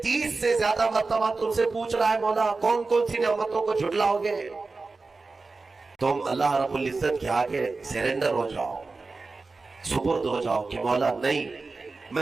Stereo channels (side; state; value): left; quieter; 3.9 dB